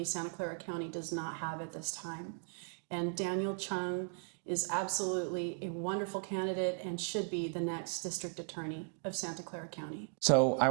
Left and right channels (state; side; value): silent; left; 53 dB below the other